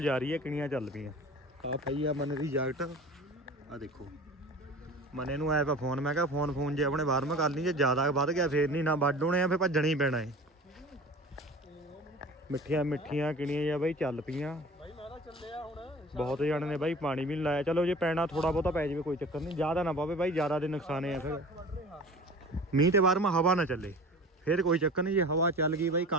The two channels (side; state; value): both; normal; correlation 0.40